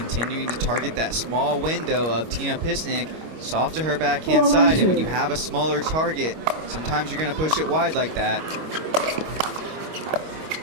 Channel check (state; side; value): late; left; 25 ms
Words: to target that small window of Tina Pisnik, soft to her backhand side. And when you have a smaller target, sometimes you're going to push it wide like that.